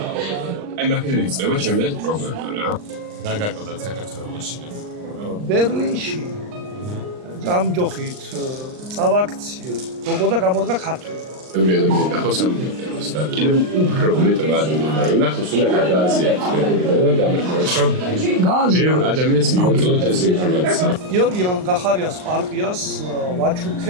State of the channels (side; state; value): left; late; 39 ms